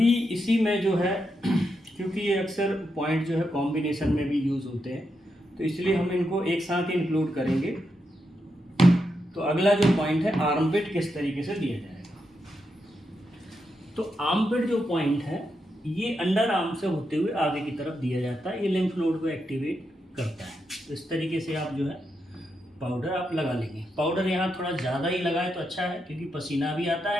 इसी में जो है क्योंकि ये अक्सर पॉइंट जो है कॉम्बिनेशन में भी यूज़ होते हैं, तो इसलिए हम इनको एक साथ ही इंक्लूड करेंगे। तो अगला जो पॉइंट है आर्मपिट किस तरीके से दिया जाएगा। तो आर्मपिट जो पॉइंट है ये अंडर आर्म से होते हुए आगे की तरफ दिया जाता है, ये लिम्फ नोड को एक्टिवेट करता है। तो इस तरीके से आप जो है पाउडर आप लगा लेंगे। पाउडर यहाँ थोड़ा ज़्यादा ही लगाए तो अच्छा है, क्योंकि पसीना भी आता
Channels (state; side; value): normal; both; correlation 0.84